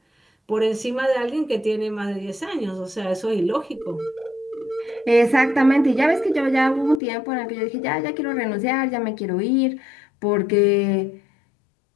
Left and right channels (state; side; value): drops out; right; at 7.0 s